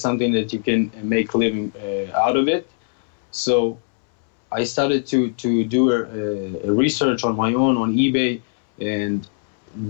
that you can make a living out of it. So I started to do a research on my own on eBay, and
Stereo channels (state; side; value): silent; right; 65 dB below the other